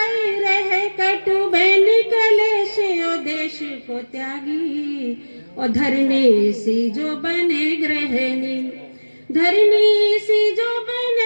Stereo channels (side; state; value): both; inverted; correlation -1.00